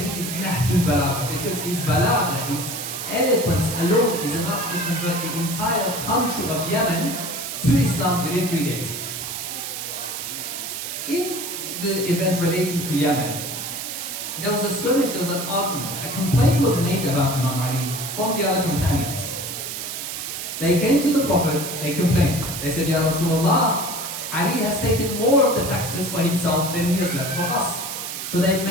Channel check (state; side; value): noise; right; hiss, 6 dB below the sound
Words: is Nahjul Balagha? Because his Balagha, his eloquence alone is enough to convert the entire country of Yemen to Islam within 3 days. In the event relating to Yemen, there was a skirmish, there was an argument. A complaint was made about Imam Ali from the other companions. They came to the Prophet, they complained. They said, Ya Rasulullah, Ali has taken more of the taxes for himself than he has left for us. So they